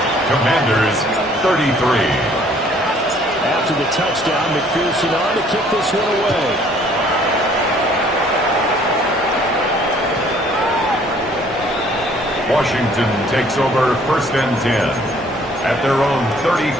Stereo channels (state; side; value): normal; both; correlation 0.59